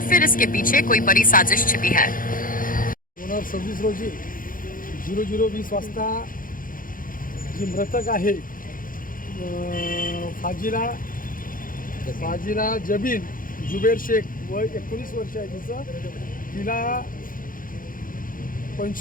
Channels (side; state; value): right; late; 0.40 ms